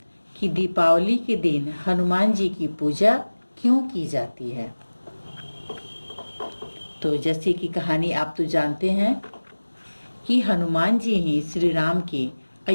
कि दीपावली के दिन हनुमान जी की पूजा क्यों की जाती है? तो जैसे कि कहानी आप तो जानते हैं कि हनुमान जी ही श्री राम के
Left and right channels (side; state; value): both; inverted; correlation -1.00